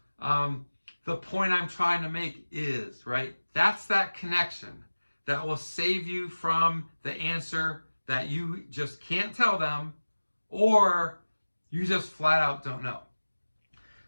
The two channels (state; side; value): inverted; both; correlation -1.00